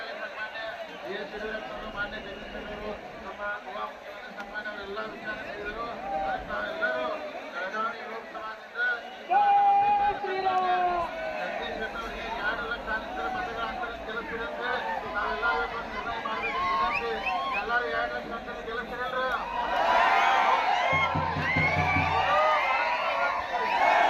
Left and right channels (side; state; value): both; identical; correlation 1.00